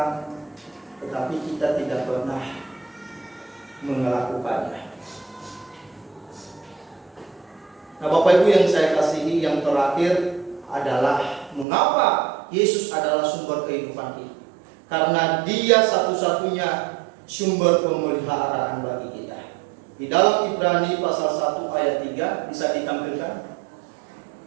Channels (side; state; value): left; drops out; at 11.7 s